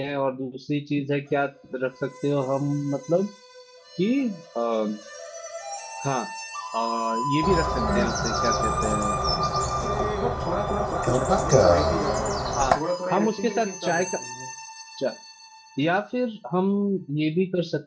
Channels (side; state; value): both; identical; correlation 1.00